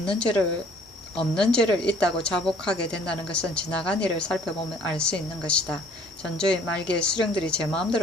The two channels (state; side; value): normal; both; correlation 0.57